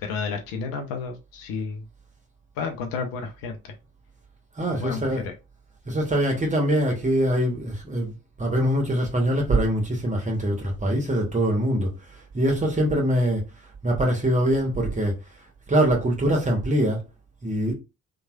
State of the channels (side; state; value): both; normal; correlation 0.63